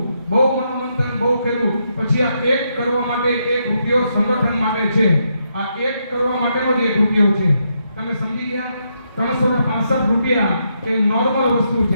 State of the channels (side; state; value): both; inverted; correlation -0.80